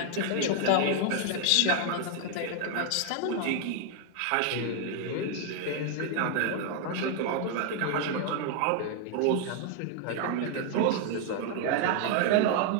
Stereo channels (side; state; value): both; different; correlation 0.00